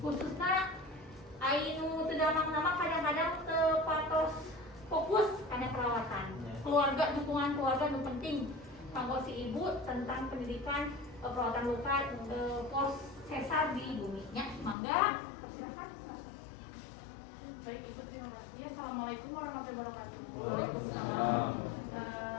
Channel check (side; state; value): right; drops out; at 14.8 s